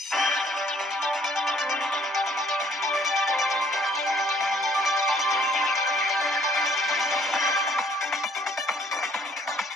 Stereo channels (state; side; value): normal; both; correlation 0.61